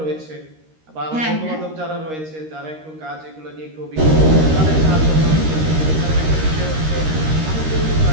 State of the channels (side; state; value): left; late; 13 ms